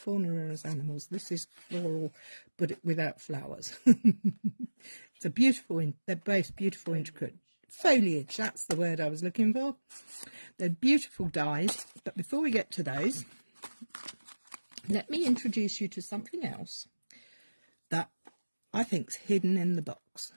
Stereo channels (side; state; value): both; inverted; correlation -1.00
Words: are as animals. This is floral, but without flowers. It's a beautiful, they're both beautiful, intricate foliage. That's the word I was looking for. They're beautiful dies, but before we get to those, let me introduce you to something else that I think's hidden in the box,